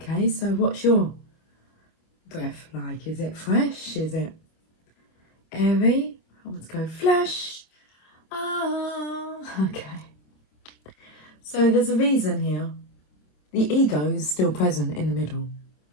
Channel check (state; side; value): late; right; 27 ms